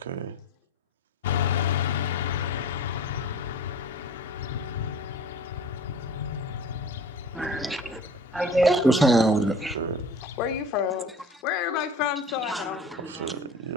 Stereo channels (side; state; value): both; normal; correlation 0.43